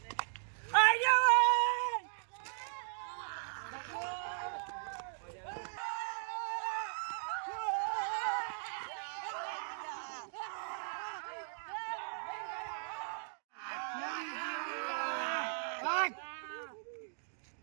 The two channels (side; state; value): left; silent; digital silence